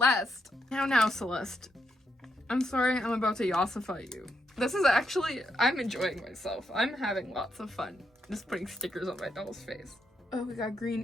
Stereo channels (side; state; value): both; normal; correlation 0.80